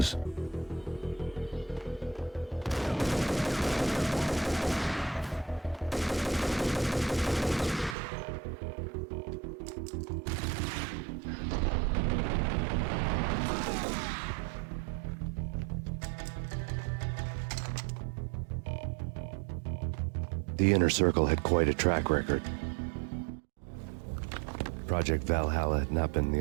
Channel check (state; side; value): drops out; left; at 8.0 s